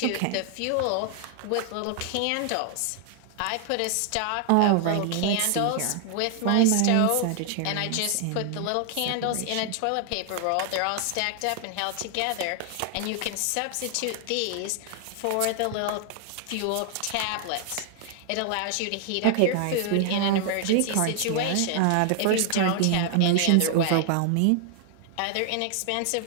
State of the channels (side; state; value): both; different; correlation 0.00